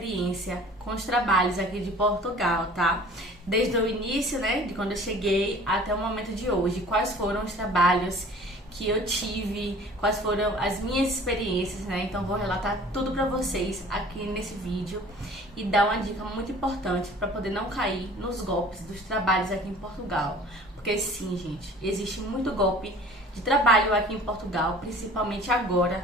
com os trabalhos aqui de Portugal, tá? Desde o início, né, de quando eu cheguei até o momento de hoje. Quais foram os trabalhos que eu tive, quais foram as minhas experiências, né? Então vou relatar tudo pra vocês aqui nesse vídeo e dar uma dica muito importante para poder não cair nos golpes dos trabalhos aqui em Portugal. Porque sim, gente, existe muito golpe de trabalho aqui em Portugal, principalmente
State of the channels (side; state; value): both; normal; correlation 0.47